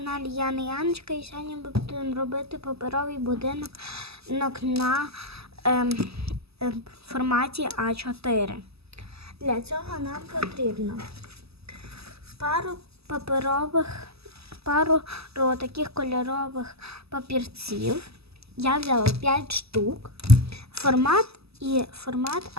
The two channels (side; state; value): left; late; 0.78 ms